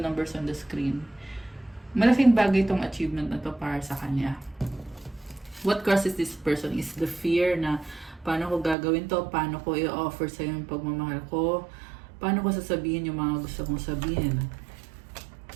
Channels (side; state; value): left; drops out; at 8.8 s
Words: on the screen. Malaking bagay tong achievement na to para sa kanya. What crosses this person is the fear na paano ko gagawin to, paano ko i-offer sa'yo yung pagmamahal ko, paano ko sasabihin yung mga gusto kong sabihin.